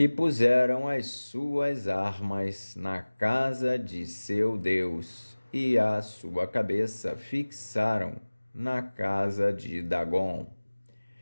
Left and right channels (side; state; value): both; inverted; correlation -1.00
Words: puseram as suas armas na casa de seu Deus, e a sua cabeça fixaram na casa de Dagom.